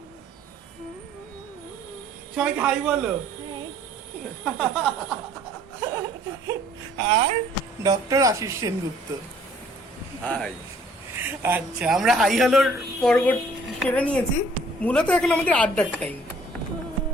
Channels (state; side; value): normal; both; correlation 0.57